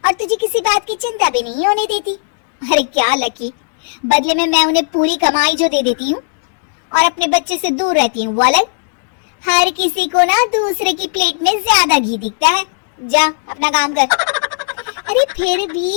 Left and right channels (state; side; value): silent; right; digital silence